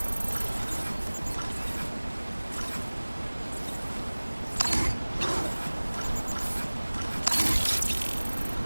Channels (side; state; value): both; inverted; correlation -1.00